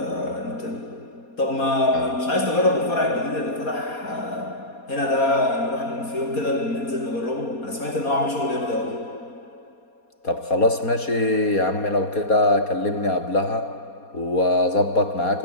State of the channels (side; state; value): right; late; 4.2 ms